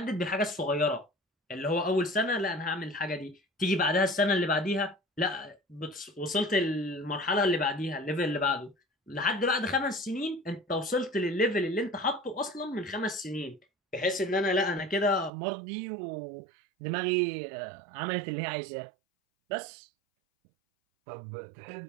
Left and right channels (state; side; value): drops out; left; at 15.3 s